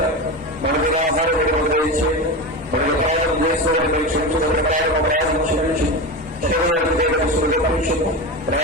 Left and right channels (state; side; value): normal; both; correlation 0.22